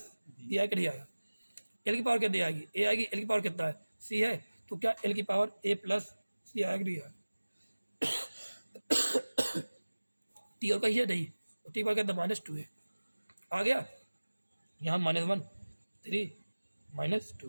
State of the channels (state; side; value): inverted; both; correlation -1.00